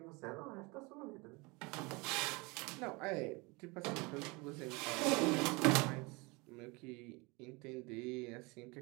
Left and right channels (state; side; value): quieter; left; 26.5 dB